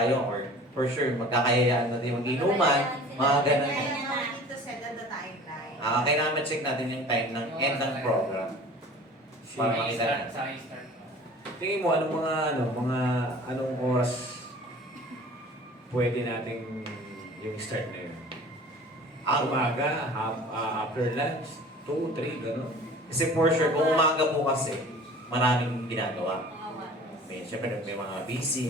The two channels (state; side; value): normal; both; correlation 0.44